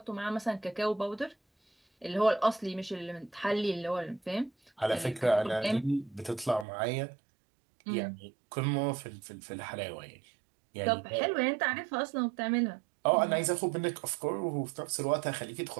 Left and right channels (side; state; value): left; drops out; at 6.7 s